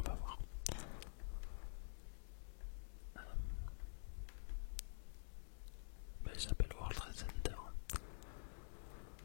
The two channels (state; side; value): silent; right; digital silence